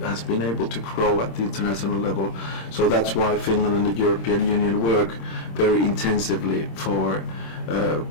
been able to grow at the international level. So that's why Finland and the European Union work very intensively for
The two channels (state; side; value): late; right; 26 ms